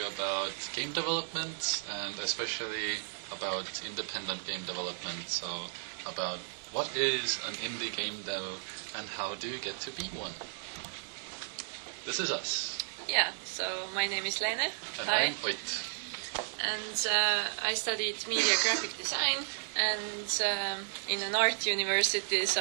about game development and especially about independent game development. So about what is an indie game dev and how do you get to be one? This is us. Yeah, so my name is Leene. And Hi. I'm Ott. And I studied media graphic design and in an art university,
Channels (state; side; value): silent; left; digital silence